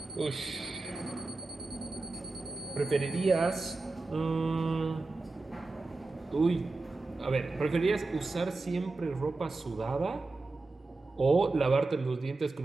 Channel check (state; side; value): quieter; left; 3.4 dB